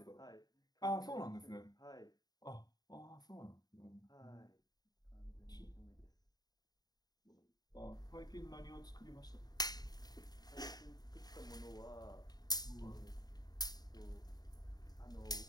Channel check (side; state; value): right; late; 0.19 ms